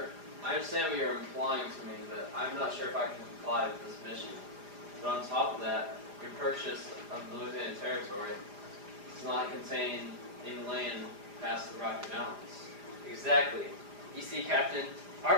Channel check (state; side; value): late; left; 4.9 ms